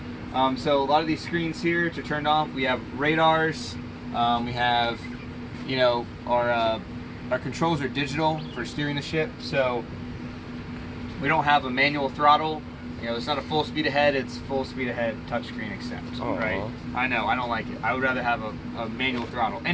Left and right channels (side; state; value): both; identical; correlation 1.00